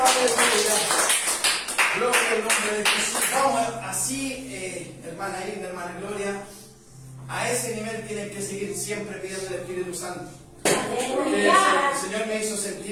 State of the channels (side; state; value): both; identical; correlation 1.00